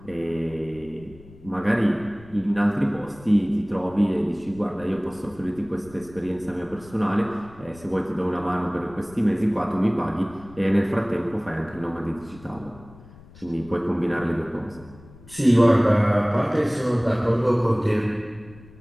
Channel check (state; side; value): noise; left; rumble, 21 dB below the sound